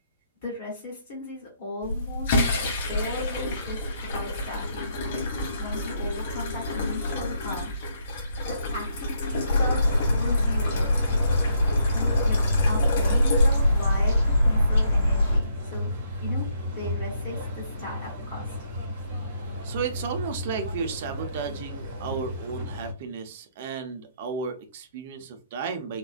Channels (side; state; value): both; inverted; correlation -0.73